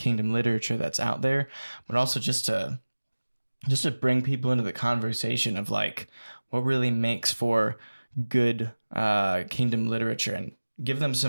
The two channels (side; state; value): both; inverted; correlation -1.00